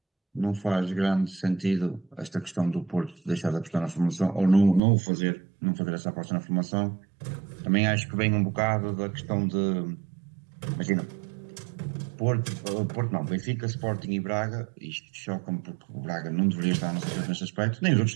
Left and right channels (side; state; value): left; drops out; at 4.8 s